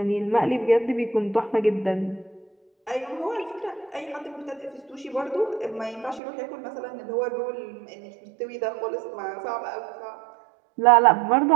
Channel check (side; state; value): left; drops out; at 6.2 s